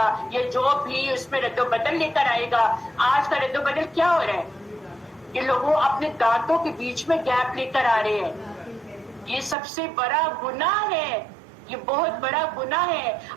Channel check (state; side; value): drops out; left; at 9.6 s